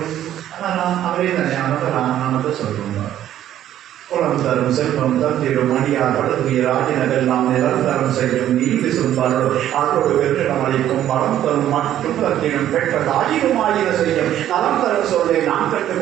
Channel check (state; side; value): quieter; left; 11.7 dB